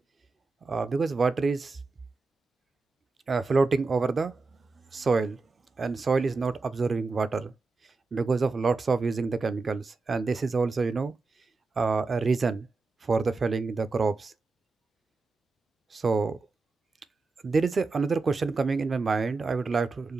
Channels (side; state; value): left; quieter; 3.9 dB